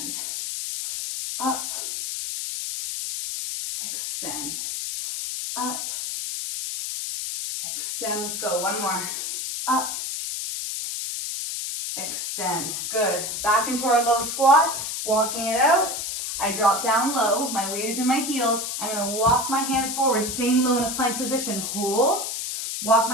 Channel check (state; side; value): noise; left; hiss, 4 dB below the sound